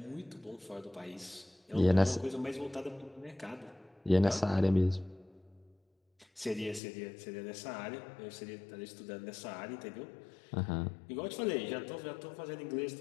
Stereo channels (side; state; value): right; drops out; at 6.8 s